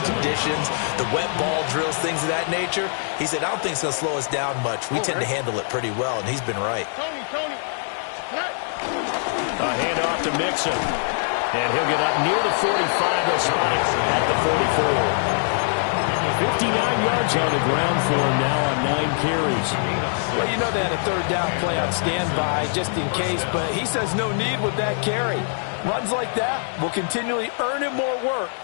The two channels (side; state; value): right; silent; 63 dB below the other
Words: conditions, the wet ball drills, things of that nature. He said, I don't think it's going to slow us down much. We tend to handle it pretty well, and he's been right. A handoff to Mixon. And he'll get up near the 45, they'll spot it at the 44. 59 yards on the ground for him now on 9 carries. Well, you know they had a third down play on standby just in case, but he says no need with that carry. Runs like that will continually earn him more work